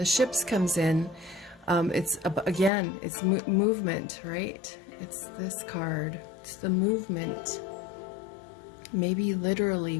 ships comes in, it's again, it's movement, right? It's this card. It's the movement. Maybe literally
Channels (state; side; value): drops out; right; at 2.7 s